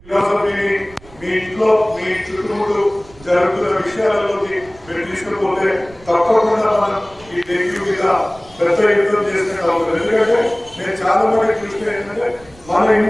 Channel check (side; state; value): right; noise; rumble, 24 dB below the sound